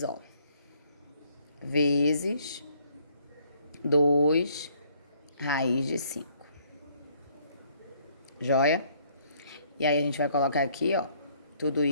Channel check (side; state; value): both; inverted; correlation -0.64